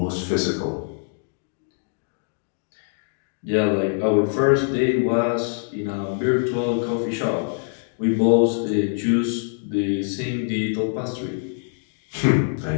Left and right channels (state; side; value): silent; right; digital silence